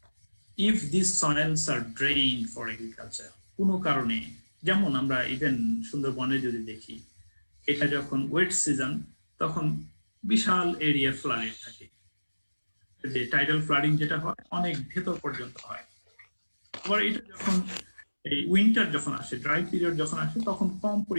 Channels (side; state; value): both; inverted; correlation -1.00